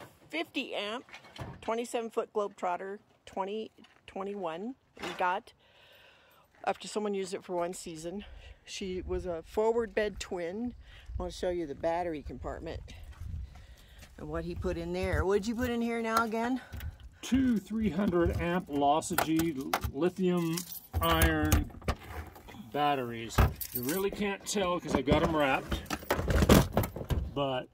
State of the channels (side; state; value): both; identical; correlation 1.00